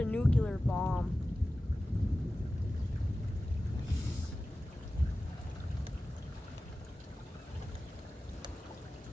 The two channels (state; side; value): normal; both; correlation 0.96